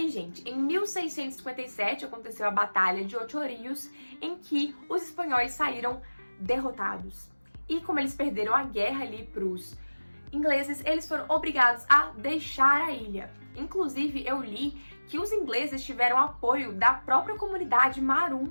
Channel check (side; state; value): both; inverted; correlation -1.00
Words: gente, em 1657 aconteceu a Batalha de Ocho Rios, em que os espanhóis saíram derrotados. E como eles perderam a guerra ali para os ingleses, eles foram obrigados a deixar a ilha. Inclusive, eu li que os ingleses tiveram apoio da própria comunidade Maroon.